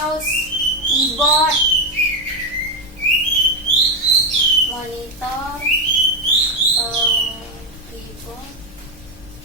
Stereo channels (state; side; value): normal; both; correlation 0.08